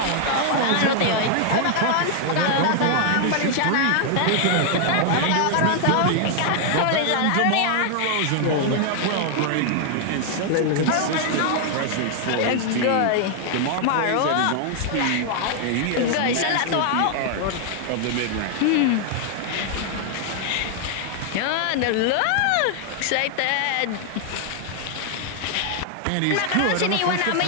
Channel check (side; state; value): both; different; correlation 0.00